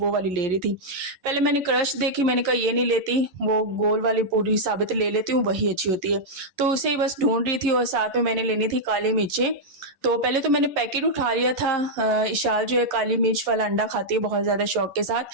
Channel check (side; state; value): left; late; 11 ms